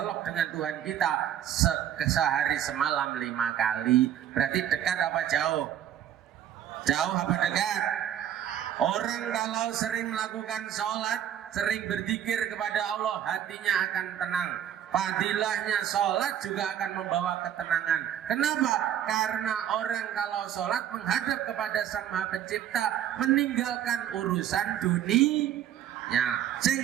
dengan Tuhan kita sehari semalam 5 kali. Berarti dekat apa jauh? Jauh apa dekat? Orang kalau sering melakukan sholat, sering berzikir kepada Allah, hatinya akan tenang. Fadilahnya sholat juga akan membawa ketenangan. Kenapa? Karena orang kalau sholat menghadap kepada Sang Maha Pencipta, meninggalkan urusan dunia.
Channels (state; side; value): quieter; left; 10.4 dB